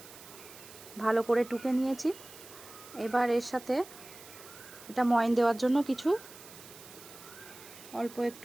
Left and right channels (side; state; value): right; noise; hiss, 18 dB below the sound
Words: ভালো করে টুকে নিয়েছি। এবার এর সাথে এটা ময়ন দেওয়ার জন্য কিছু অল্প